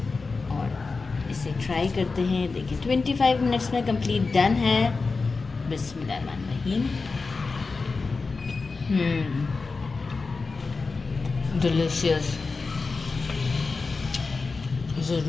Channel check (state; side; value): quieter; right; 4.2 dB